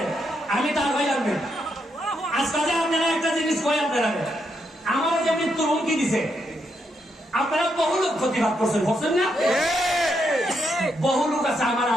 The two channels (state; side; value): normal; both; correlation 0.79